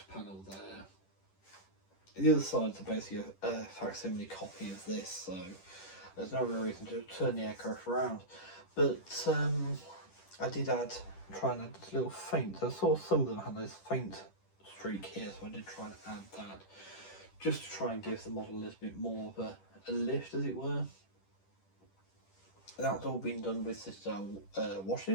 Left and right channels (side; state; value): right; late; 10 ms